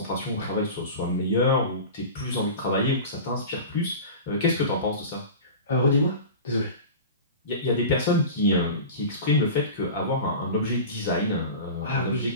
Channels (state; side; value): inverted; both; correlation -0.33